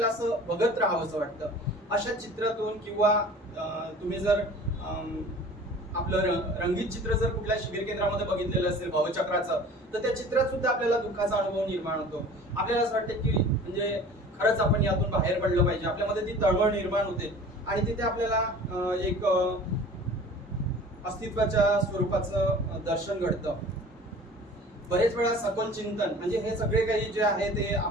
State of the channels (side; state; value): both; normal; correlation 0.44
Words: असं बघत राहावं असं वाटतं. अशा चित्रातून किंवा तुम्ही जर आपलं रंगीत चित्र जर कुठल्या शिबिर केंद्रामध्ये बघितलेलं असेल भवचक्राचं, तर त्या चित्रात सुद्धा आपल्याला दुःखाचा अनुभव निर्माण होतो. आपल्याला असं वाटतं की म्हणजे खरंच आपण यातून बाहेर पडलं पाहिजे, आपल्यामध्ये ती तळमळ निर्माण होते आणि तिथे आपल्याला एक अस्तित्वाच्या स्वरूपाचं दर्शन घडतं. बरेच वेळा सखोल चिंतन म्हणजे हे सगळे काही जे आहे ते